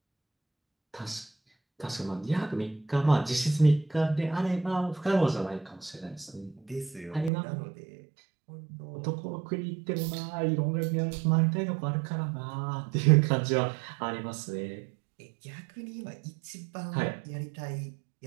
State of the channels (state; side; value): drops out; left; at 7.3 s